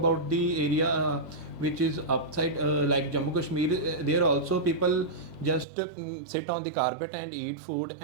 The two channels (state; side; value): drops out; left; at 5.7 s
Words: the area which is upside, like Jammu Kashmir, there also people just sit on the carpet and eat food,